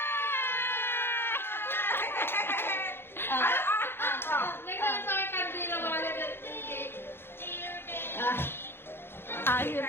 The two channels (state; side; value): late; right; 0.11 ms